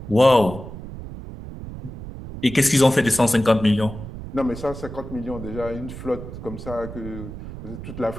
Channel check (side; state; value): right; noise; rumble, 11 dB below the sound